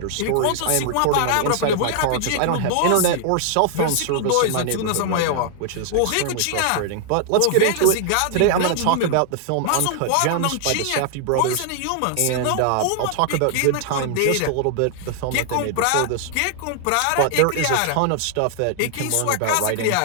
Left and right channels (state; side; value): different; both; correlation 0.00